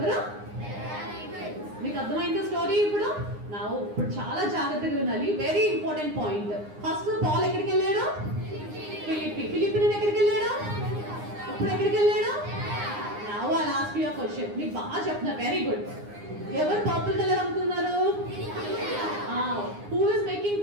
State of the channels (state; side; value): late; left; 9.7 ms